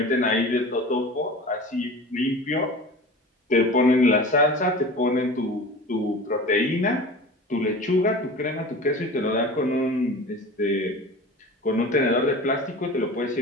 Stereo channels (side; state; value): both; normal; correlation 0.36